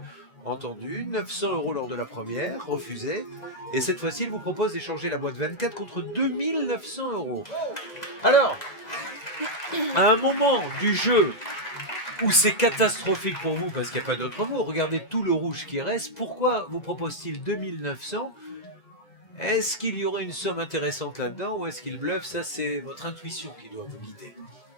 entendue. 900 € lors de la première, refusée. Et cette fois-ci, il vous propose d'échanger la boîte 24 contre 2900 €. Alors, à un moment du jeu où c'est catastrophique pour vous, parce qu'il n'y a pas d'autre mot, regardez tout le rouge qui reste, pourquoi vous propose-t-il 2900 €? Est-ce qu'il y aurait une somme intéressante là-dedans ou est-ce qu'il bluffe? Ça, c'est votre intuition qui doit vous guider.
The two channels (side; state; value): right; late; 2.0 ms